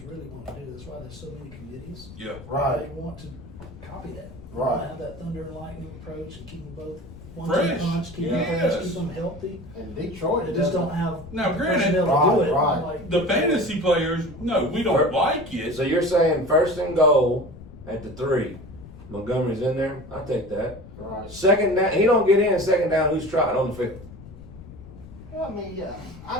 really want to do. That's why there's so many committees. Yeah. right? They want to copy that. They Right. want to have that thunder and lightning approach and keep them both one Fresh. two punch, keep them Yes. fresh, keep them healthy. And Detroit They just doesn't- don't have Now, the granted- personnel to do Right, it. right. Like, The fantasy players, no, we don't like it. So you're saying first and goal at the 3. Montgomery's in there. I take that. Right. Second down, he don't get in. Second down, who's trotting on the field? I mean, yeah.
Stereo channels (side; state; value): left; noise; rumble, 16 dB below the sound